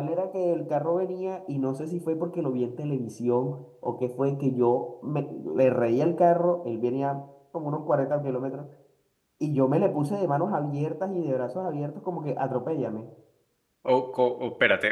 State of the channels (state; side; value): identical; both; correlation 1.00